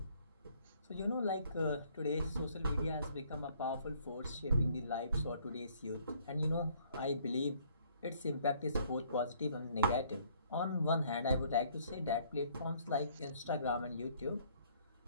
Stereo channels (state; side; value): inverted; both; correlation -0.62